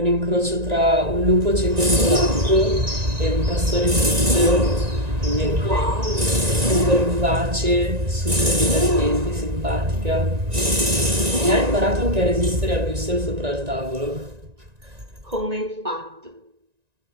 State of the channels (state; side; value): late; left; 1.9 ms